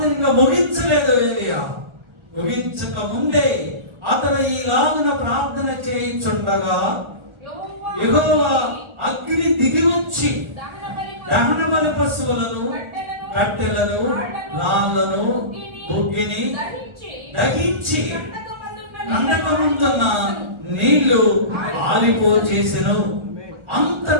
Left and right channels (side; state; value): left; late; 1.4 ms